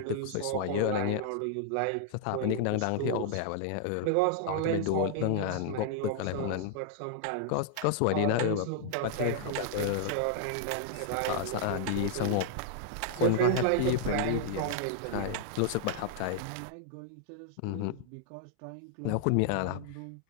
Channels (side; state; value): both; different; correlation -0.01